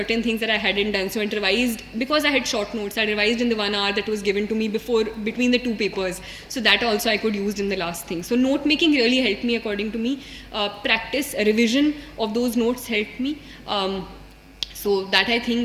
things that I hadn't done. So I revised, because I had short notes, I revised in the 1 hour that was given to me between the two papers. So that also I could use in the last thing. So note making really helped me, according to me. Practice, revision of those notes helped me. So that, I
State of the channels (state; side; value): identical; both; correlation 1.00